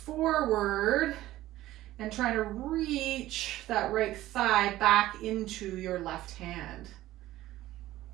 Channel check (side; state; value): left; quieter; 15.4 dB